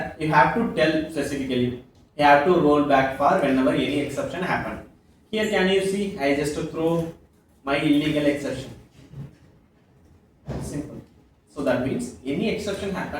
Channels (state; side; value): identical; both; correlation 1.00